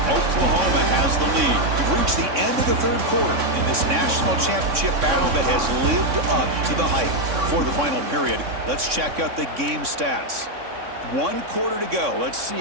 Oklahoma has the lead. We've reached the end of the third quarter in this national championship battle that has lived up to the hype. For the final period, let's check out the game stats. 1 quarter to go. Let's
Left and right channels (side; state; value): left; late; 3.6 ms